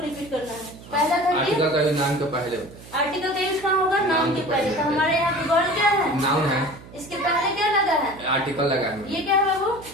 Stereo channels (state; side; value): noise; right; hum, 19 dB below the sound